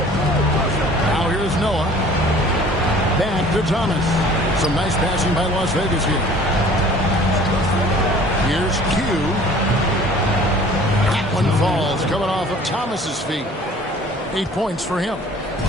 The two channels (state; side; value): normal; both; correlation 0.49